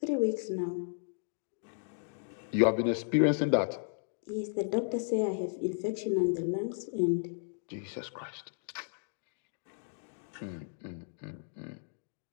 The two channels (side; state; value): right; silent; digital silence